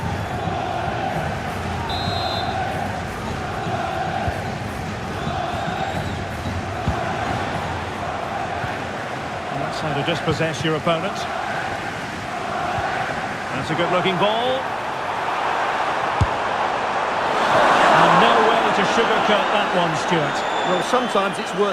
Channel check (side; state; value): both; identical; correlation 1.00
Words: That's how to dispossess your opponent. That's a good-looking ball. And no way to sugarcoat that one, Stuart. Well, sometimes it's